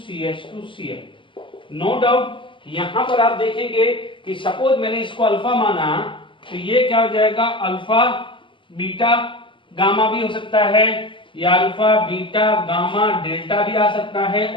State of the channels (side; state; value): right; late; 0.25 ms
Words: CH2 Cl। No doubt यहां पर आप देखेंगे कि सपोज मैंने इसको अल्फा माना, तो ये क्या हो जाएगा अल्फा बीटा गामा भी हो सकता है, या अल्फा बीटा गामा डेल्टा भी आ सकता है,